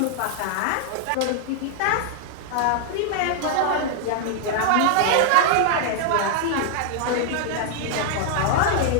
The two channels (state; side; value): different; both; correlation 0.00